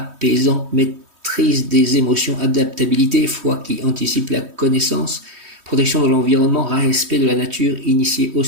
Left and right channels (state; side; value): late; left; 3.1 ms